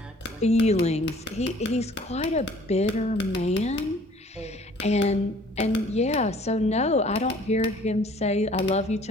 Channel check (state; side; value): normal; both; correlation 0.54